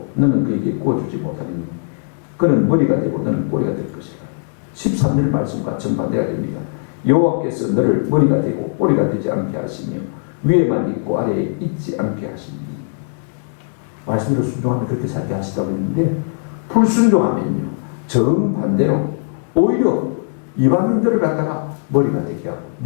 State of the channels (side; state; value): right; silent; digital silence